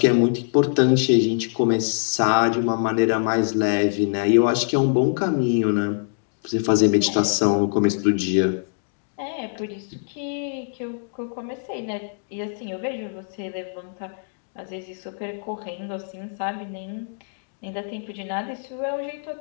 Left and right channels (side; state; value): right; silent; digital silence